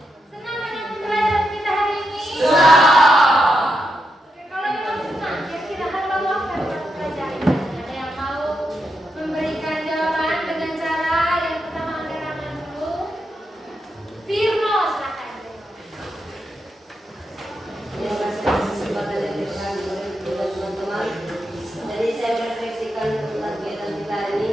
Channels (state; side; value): normal; both; correlation 0.84